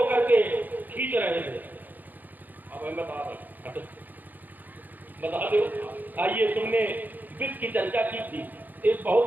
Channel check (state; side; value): late; left; 0.084 ms